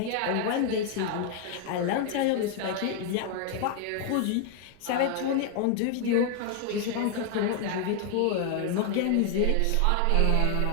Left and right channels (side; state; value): both; different; correlation 0.00